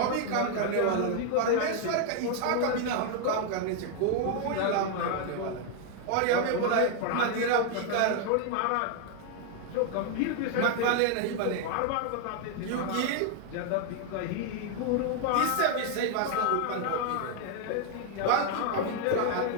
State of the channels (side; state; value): both; different; correlation 0.00